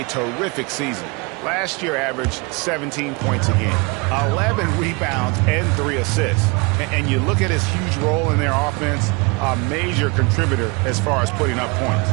terrific season. Last year averaged 17 points a game, 11 rebounds, and 3 assists. And you look at his huge role in their offense, a major contributor as far as putting up points.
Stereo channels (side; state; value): left; quieter; 28.8 dB